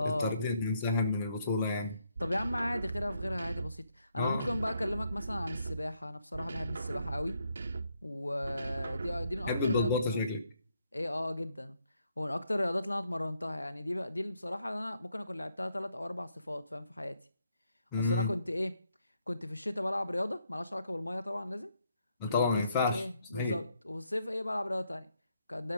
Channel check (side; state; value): both; inverted; correlation -0.75